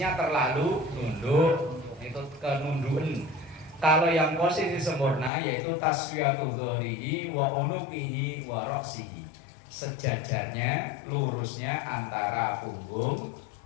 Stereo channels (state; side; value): drops out; right; at 5.3 s